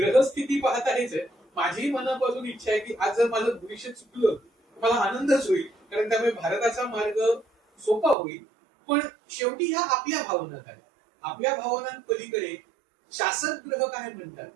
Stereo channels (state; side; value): drops out; left; at 8.2 s